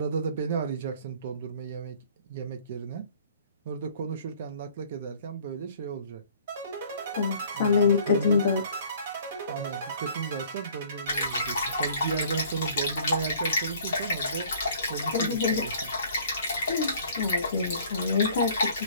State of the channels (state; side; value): inverted; both; correlation -0.54